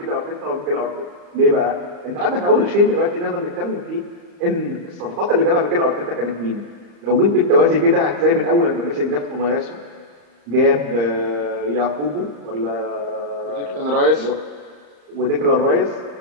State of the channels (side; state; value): left; late; 35 ms